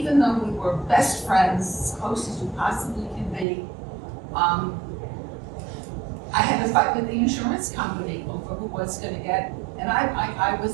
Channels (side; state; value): left; drops out; at 3.5 s